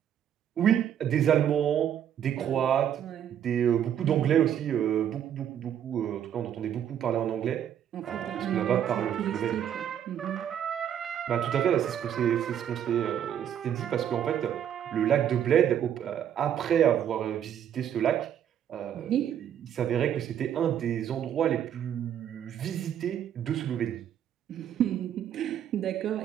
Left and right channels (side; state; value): left; quieter; 9.7 dB